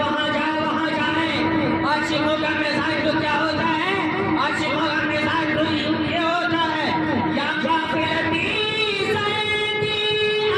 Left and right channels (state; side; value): identical; both; correlation 1.00